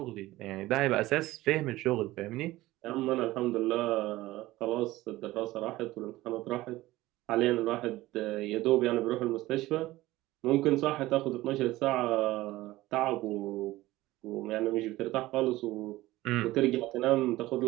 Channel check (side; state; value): left; quieter; 17.6 dB